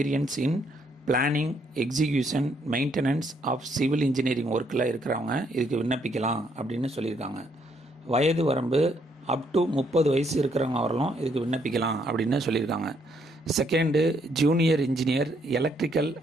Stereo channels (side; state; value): both; normal; correlation 0.71